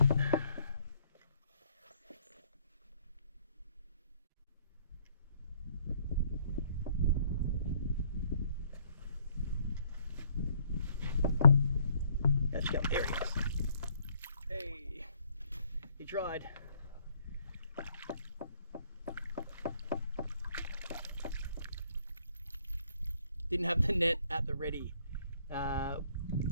Let's go. There he is. Hey, he tried. Didn't have the net at the ready,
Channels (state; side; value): inverted; both; correlation -0.64